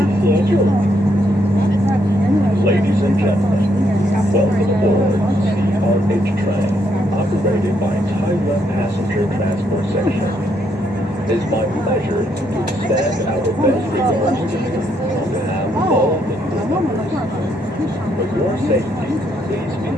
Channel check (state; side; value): normal; both; correlation 0.74